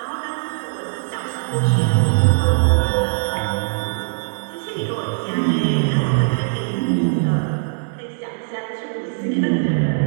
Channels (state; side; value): silent; left; digital silence